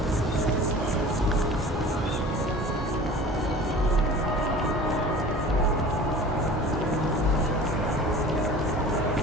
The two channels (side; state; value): both; normal; correlation 0.41